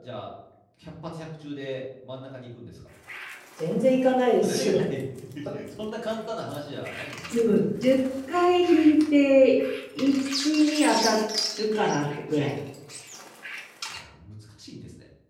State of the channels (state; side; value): identical; both; correlation 1.00